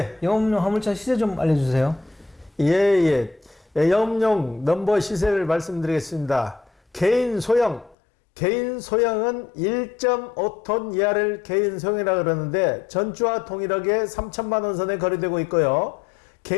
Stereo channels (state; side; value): drops out; right; at 8.0 s